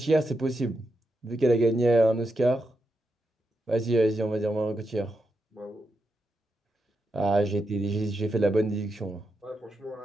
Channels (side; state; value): both; normal; correlation 0.85